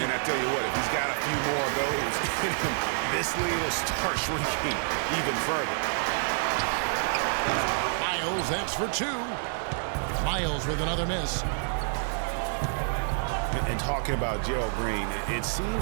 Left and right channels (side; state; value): left; silent; digital silence